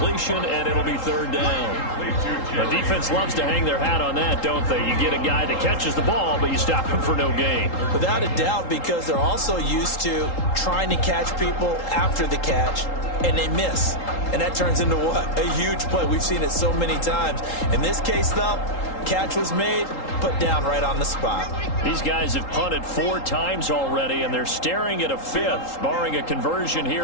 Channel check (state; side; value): late; right; 3.8 ms